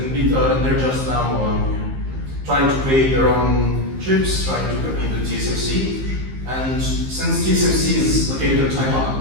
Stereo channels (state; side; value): late; left; 15 ms